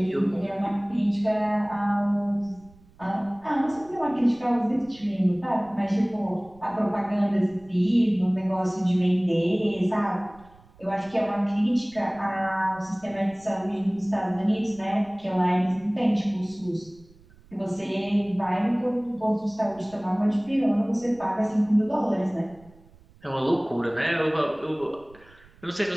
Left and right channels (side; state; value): right; noise; rumble, 26 dB below the sound